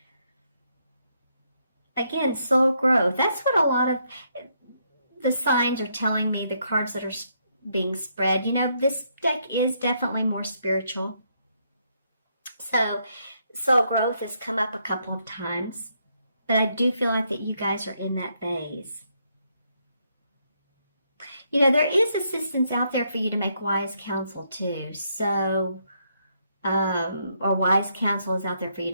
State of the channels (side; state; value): both; inverted; correlation -0.75